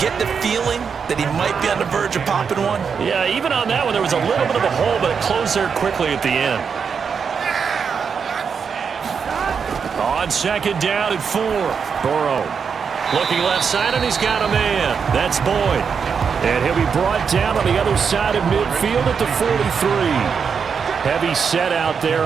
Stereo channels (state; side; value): quieter; left; 6.3 dB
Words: the feeling that he might be on the verge of popping one. Yeah, even on that one, there was a little bit of a hole, but it closed there quickly at the end. On 2nd down and 4. Burrow looking left side, and he's got a man. That's Boyd. And he'll be brought down on the other side of midfield at the 43. Heavy set out there